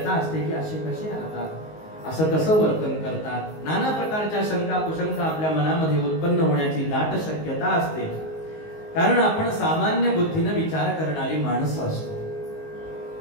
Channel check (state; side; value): late; right; 19 ms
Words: असते की असे कसे राहतात, असं कसं वर्तन करतात. नाना प्रकारच्या शंका कुशंका आपल्या मनामध्ये उत्पन्न होण्याची दाट शक्यता असते. कारण आपण सामान्य बुद्धीने विचार करणारी माणसं असतो.